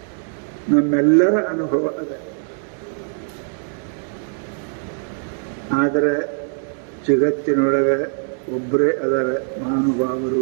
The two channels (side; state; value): left; silent; 57 dB below the other